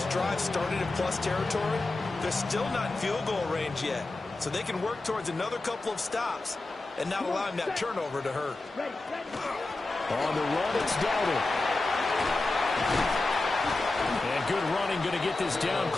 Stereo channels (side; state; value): right; quieter; 3.1 dB